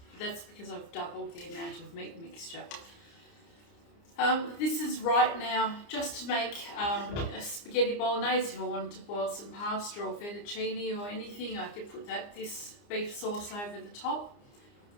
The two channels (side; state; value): right; late; 29 ms